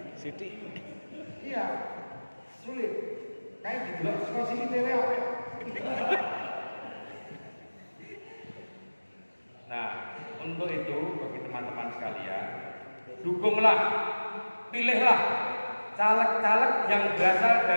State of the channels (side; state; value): both; inverted; correlation -1.00